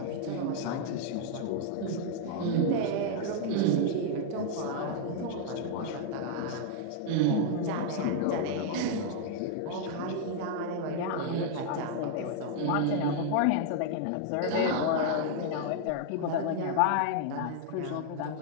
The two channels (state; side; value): different; both; correlation -0.01